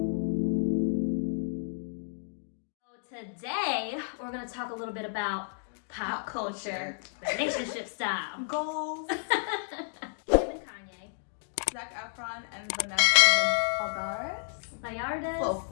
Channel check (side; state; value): right; silent; digital silence